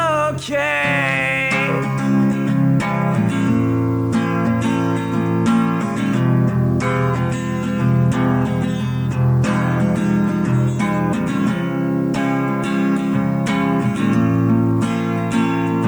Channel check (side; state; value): both; identical; correlation 1.00